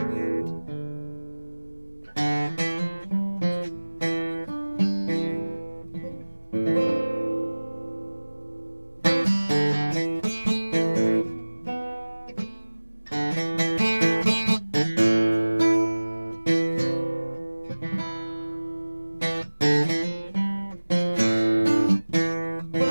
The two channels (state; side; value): inverted; both; correlation -1.00